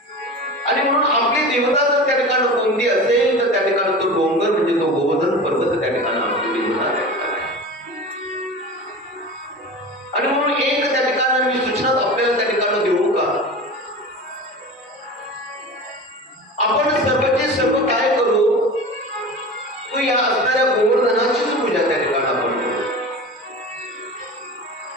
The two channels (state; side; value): normal; both; correlation 0.32